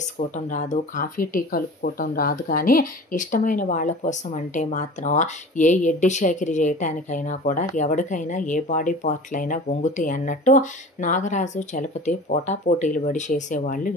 రాదు, కాఫీ టీ కలుపుకోవటం రాదు, కానీ ఇష్టమైన వాళ్ళ కోసం అంటే మాత్రం ఏ ఎడ్డి షేకిరి చేయటానికైనా కూడా ఎవరికైనా ఏ బాడీ పార్ట్లైనా వంగుతాయి అన్నట్టు నాగరాజు చలపతి పోటాపోటీలు పడి చేసేవాళ్ళు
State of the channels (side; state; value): both; normal; correlation 0.39